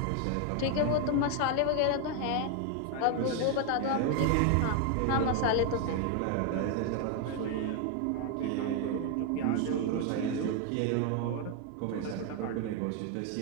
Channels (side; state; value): both; different; correlation 0.01